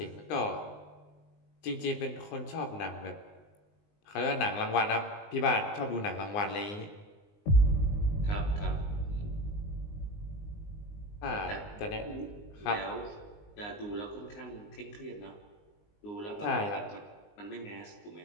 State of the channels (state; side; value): late; right; 19 ms